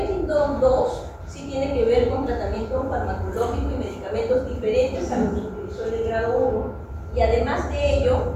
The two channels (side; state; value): both; identical; correlation 1.00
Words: 2 sí tiene que ver con tratamiento farmacológico y medicamentos diferentes a los que utilizó el de grado 1, y además de ello